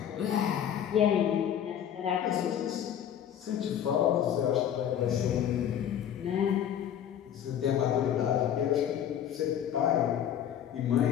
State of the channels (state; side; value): quieter; right; 9.7 dB